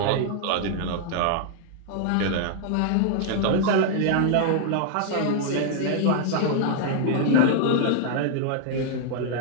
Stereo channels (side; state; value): both; different; correlation 0.00